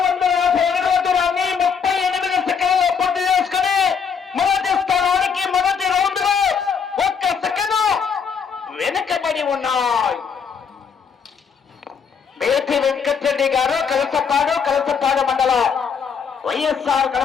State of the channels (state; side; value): quieter; right; 6.5 dB